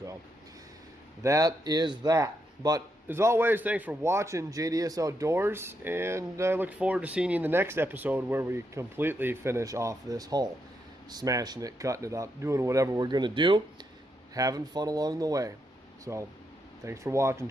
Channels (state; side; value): normal; both; correlation 0.81